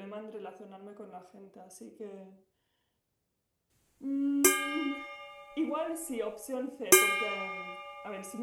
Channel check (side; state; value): both; identical; correlation 1.00